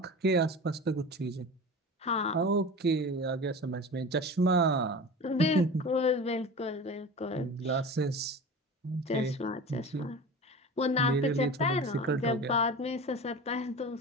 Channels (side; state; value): both; normal; correlation 0.34